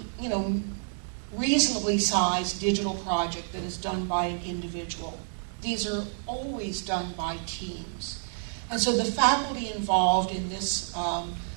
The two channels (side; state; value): left; silent; digital silence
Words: reasonably sized digital project that is done by an individual. These are always done by teams. And so the faculty involved in this